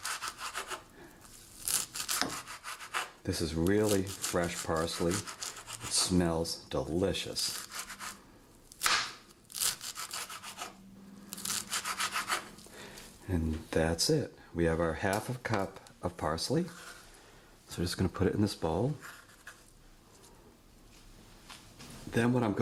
This is really fresh parsley. It smells delicious. And that's it. We have our half a cup of parsley. So we're just going to put it in this bowl. Then what I'm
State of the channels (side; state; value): both; identical; correlation 1.00